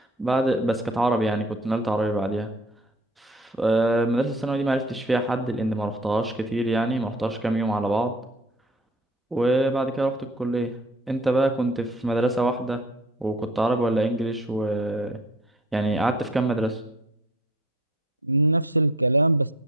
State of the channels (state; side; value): normal; both; correlation 0.47